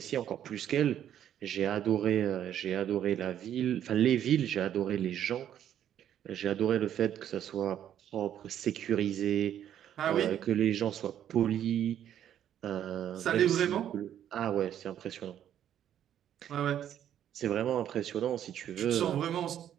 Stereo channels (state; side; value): quieter; left; 10.4 dB